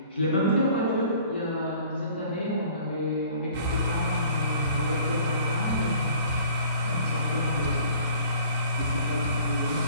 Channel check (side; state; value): both; inverted; correlation -0.51